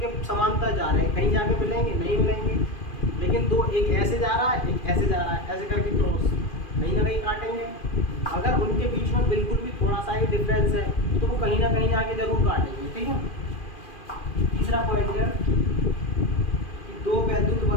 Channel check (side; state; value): right; late; 2.4 ms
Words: समांतर जा रहे हैं, कहीं जाके मिलेंगे? नहीं मिलेंगे। लेकिन दो, एक ऐसे जा रहा है, एक ऐसे जा रहा है, ऐसे करके क्रॉस, कहीं ना कहीं काटेंगे। अगर उनके बीच में बिल्कुल भी थोड़ा सा ही डिफरेंस है तो वो कहीं ना कहीं जाके जरूर काटेंगे, ठीक है। तीसरा पॉइंट है कि दो वैद्युत